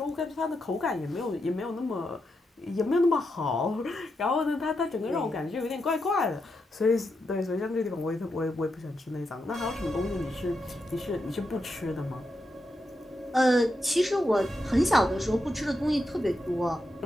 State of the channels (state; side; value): normal; both; correlation 0.85